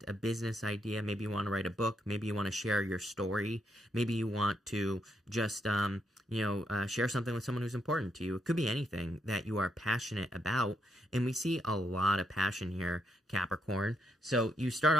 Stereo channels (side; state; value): both; normal; correlation 0.78